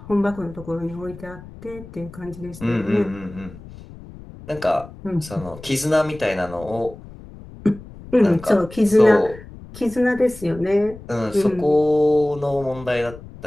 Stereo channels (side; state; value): left; noise; rumble, 17 dB below the sound